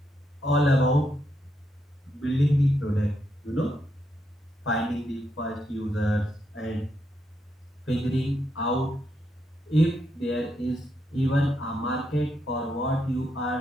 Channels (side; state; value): both; normal; correlation 0.80